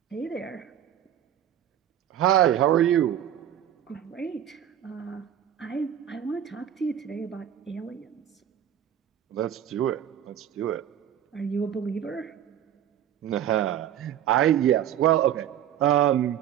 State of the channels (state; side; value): quieter; left; 10.7 dB